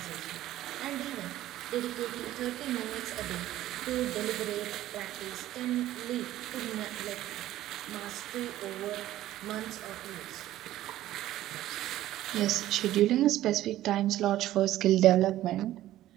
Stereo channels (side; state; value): left; quieter; 14.1 dB